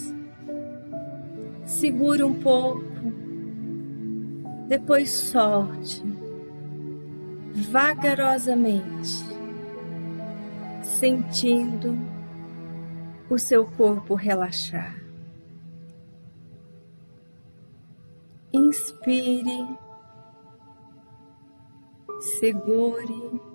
Segure um pouco, depois solte, vagarosamente, sentindo o seu corpo relaxar. Inspire, segure,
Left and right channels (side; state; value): both; inverted; correlation -1.00